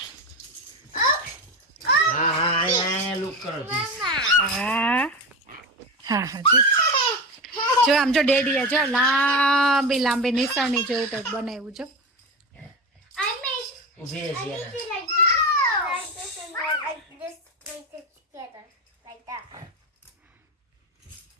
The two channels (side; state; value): both; normal; correlation 0.22